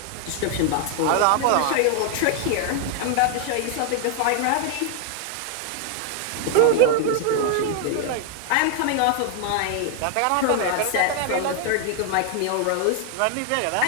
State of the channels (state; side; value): different; both; correlation 0.00